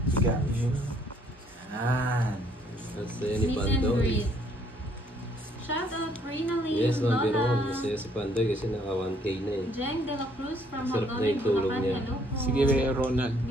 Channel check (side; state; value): both; normal; correlation 0.65